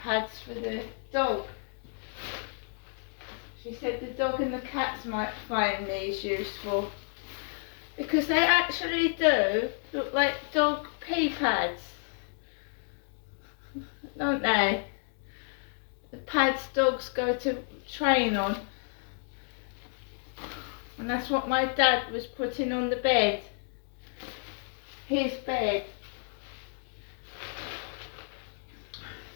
for the dog. She said the dog and the cats might find these useful, because they actually do look like dog pee pads, don't they? The pads dogs go to train on. And that's what my dad was putting on the bed. His bed.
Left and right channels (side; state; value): right; silent; 57 dB below the other